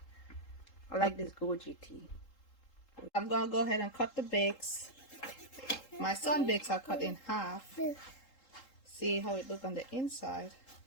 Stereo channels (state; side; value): late; right; 3.8 ms